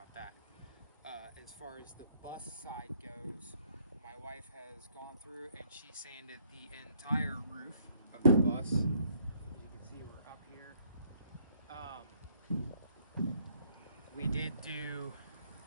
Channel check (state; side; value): inverted; both; correlation -0.66